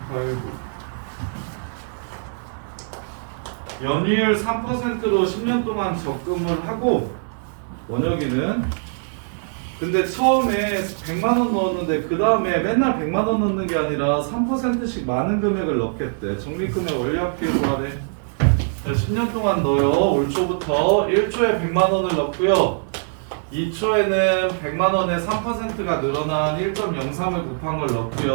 8, 9. 연이율 3%로 10년 동안 적금을 하고 원혁이는 근데 처음에 100만 원 넣었는데 그 다음에 맨날 100만 원 넣는 게 아니라 3%씩 많은 금액을 넣겠대. 적립금액 원리합계로 하래. 10년 동안 넣어요. 올 초부터 1초에 100만 원을 넣고요. 2초에는 100만 원에 3%가 늘어난 1.03을 곱한 걸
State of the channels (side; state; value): left; silent; digital silence